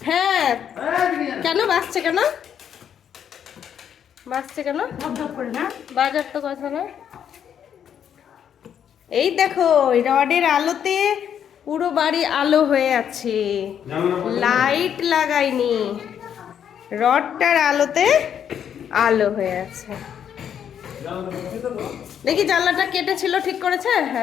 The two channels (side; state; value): right; quieter; 8.8 dB